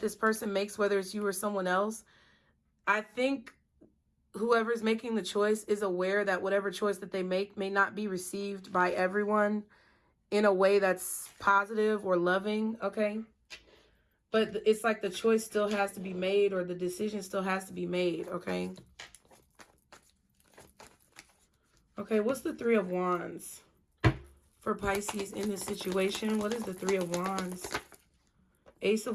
person makes, whether it's you or someone else, I think whoever's making the choice is aware that whatever choice that they make may not be received by everyone in a way that's positive or loving, okay? But it's like the choice still has to be made, or the decision still has to be made, okay? Okay, what's the 3 of Wands for Pisces in this situation? What is the 3 of Wands? Ace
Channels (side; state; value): both; identical; correlation 1.00